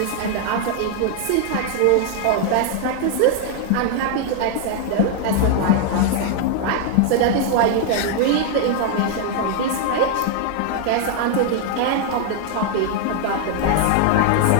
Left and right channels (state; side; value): different; both; correlation 0.00